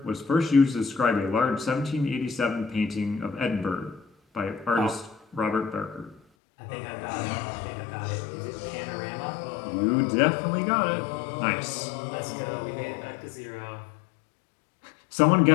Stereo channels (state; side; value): drops out; right; at 6.2 s